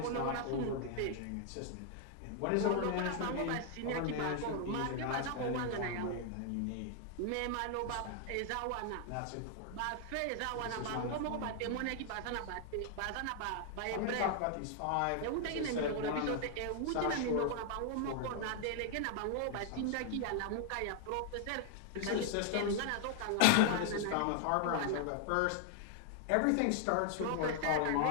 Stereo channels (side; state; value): both; different; correlation 0.00